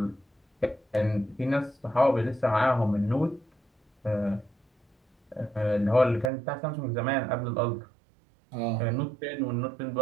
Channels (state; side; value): drops out; left; at 6.3 s